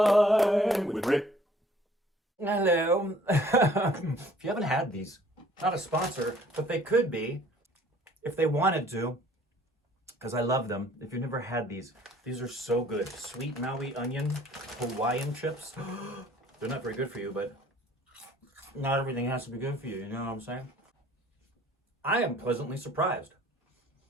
with Rick. Hello. If you haven't had these, not a sponsor, but they could be if they wanted to, because I love them. If you've never had these are so good. Sweet Maui onion Hawaiian chips. They're not very good for you, but not everything has to be good for you. You know what I'm saying? I am pleasantly surprised.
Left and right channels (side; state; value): both; normal; correlation 0.56